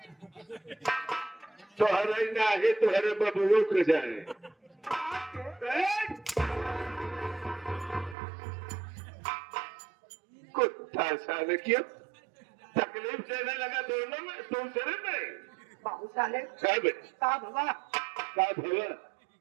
तोहरे नाही तोहरे बबुओ के जाए। कुत्ता साले क्यों तकलीफ देने लगा दोनों में, दूसरे में। बाबू साहब कब का भवा का भवा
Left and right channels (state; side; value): drops out; left; at 8.2 s